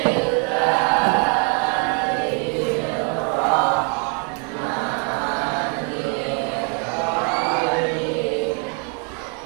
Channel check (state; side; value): quieter; left; 39.1 dB